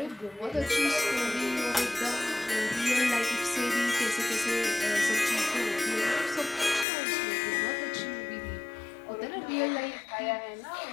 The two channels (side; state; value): right; drops out; at 6.9 s